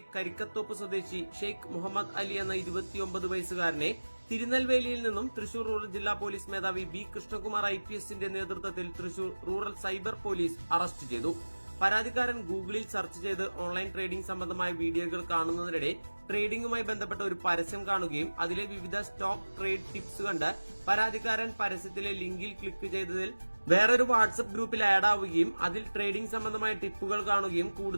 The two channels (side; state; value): both; inverted; correlation -1.00